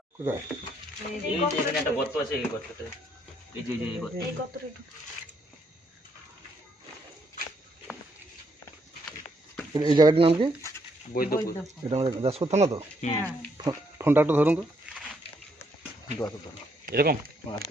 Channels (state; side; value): normal; both; correlation 0.73